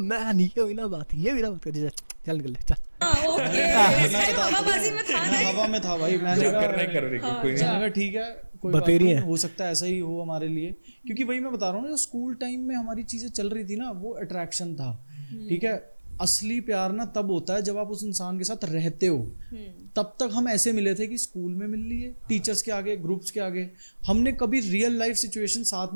ये भी ना बात कर, चल निकल चल। ओके, हवाबाजी में था ना। हवा में था भाई, मैंने जो कहा करना है कर रही कोई नहीं। मैंने कहा ठीक है, कोई बात बतेरी नहीं, है। हो सकता है ऐसा ही हो हमारे लिए, क्योंकि वही मैं बता रहा हूँ ना, जो स्कूल टाइम में हमारी चीजें चल रही थी ना, वो अट्रैक्शन था। ठीक है, असली प्यार ना तब होता है जब आप उस इंसान के साथ रहते हो। तब तक हम ऐसे मिले थे कि स्कूल में मिल लिए, टीचर्स के आगे, ग्रुप्स के आगे, हमने कभी रियल लाइफ सिचुएशन साथ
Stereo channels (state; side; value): inverted; both; correlation -1.00